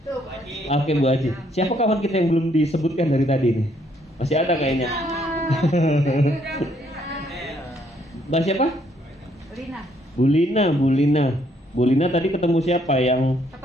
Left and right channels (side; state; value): both; normal; correlation 0.69